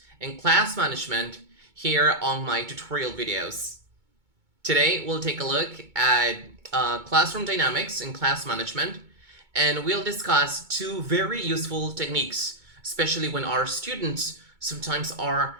and class management here on my tutorial videos. Today we'll take a look at classroom dynamics and class management, and we'll discuss two very useful techniques, especially when our students sometimes are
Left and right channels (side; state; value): left; late; 2.2 ms